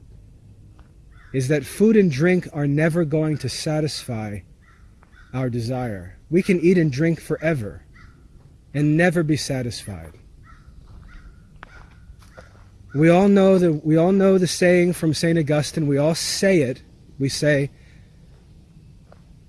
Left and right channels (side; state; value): both; identical; correlation 1.00